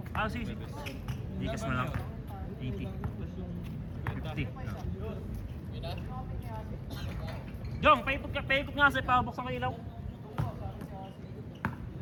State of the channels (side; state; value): both; identical; correlation 1.00